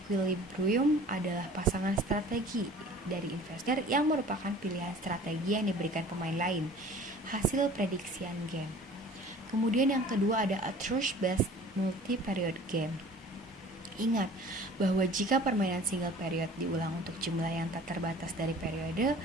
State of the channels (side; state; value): both; normal; correlation 0.47